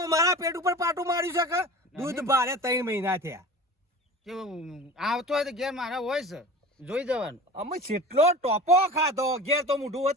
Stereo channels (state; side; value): normal; both; correlation 0.36